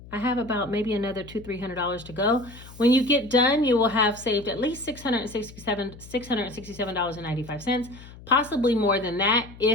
I have about maybe another $200-300 to go. When you get done, you will have saved at least $667.95, possibly more than that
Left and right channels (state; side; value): noise; left; hum, 18 dB below the sound